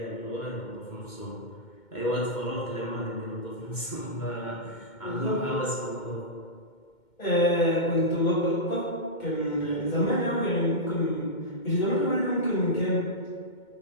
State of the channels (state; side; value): late; right; 2.2 ms